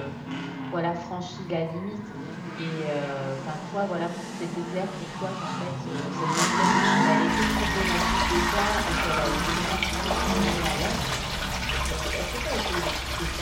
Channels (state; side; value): identical; both; correlation 1.00